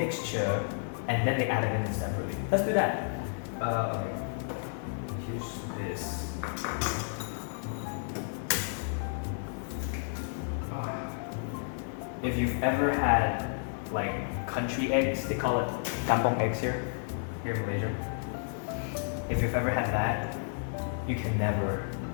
and then they added it in separately. Let's do that. Okay. Here's this. If you've ever had like country eggs, they call it kampong eggs here in Malaysia. If you've ever had that, you can never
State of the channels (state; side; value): silent; right; digital silence